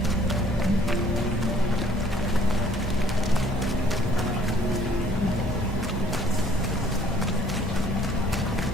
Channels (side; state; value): both; normal; correlation 0.59